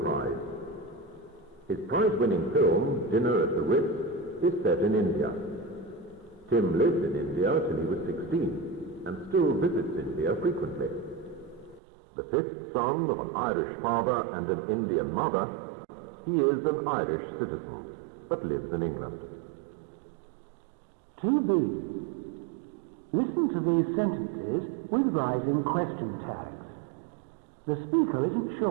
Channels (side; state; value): left; drops out; at 11.8 s